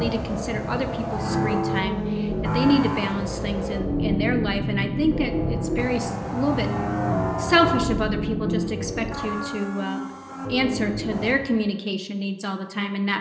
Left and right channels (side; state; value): both; identical; correlation 1.00